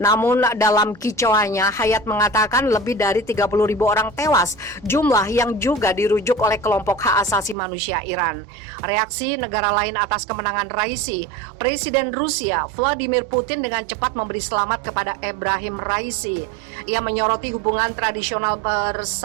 dalam kicauannya, Hayat mengatakan lebih dari 30.000 orang tewas, jumlah yang juga dirujuk oleh kelompok hak asasi manusia Iran. Reaksi negara lain atas kemenangan Raisi, Presiden Rusia Vladimir Putin dengan cepat memberi selamat kepada Ebrahim Raisi. Ia menyoroti hubungan tradisional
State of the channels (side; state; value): left; drops out; at 7.6 s